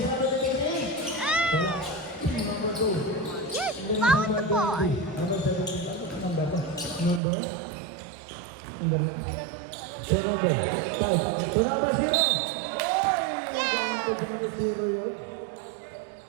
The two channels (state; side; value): drops out; left; at 7.2 s